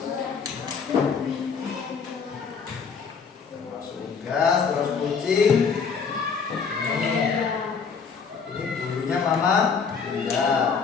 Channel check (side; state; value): right; quieter; 5.8 dB